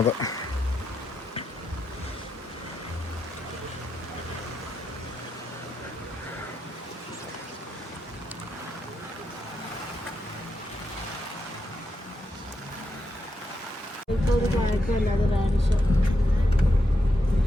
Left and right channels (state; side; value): normal; both; correlation 0.84